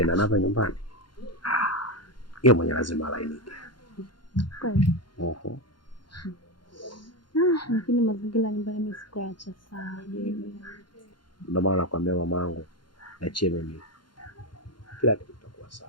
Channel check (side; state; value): right; late; 0.71 ms